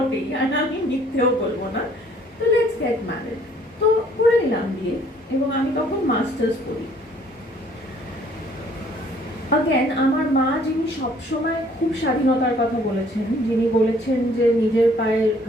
আর আমি মিথ্যেও বলবো না, তো লেটস গেট ম্যারেড। তো করে নিলাম বিয়ে, এবং আমি তখন মাস্টার্স করি। আগেন আমার মা, যিনি সবসময় খুব স্বাধীনতার কথা বলেছেন, যিনি বলেছেন যে নিজের পায়ে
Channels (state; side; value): normal; both; correlation 0.59